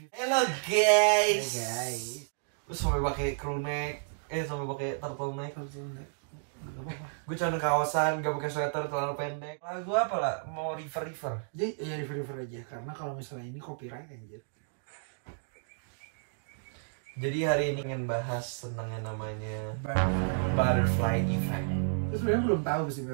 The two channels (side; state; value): left; silent; digital silence